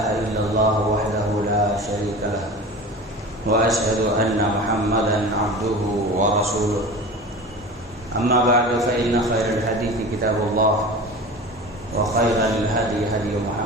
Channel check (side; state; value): both; normal; correlation 0.34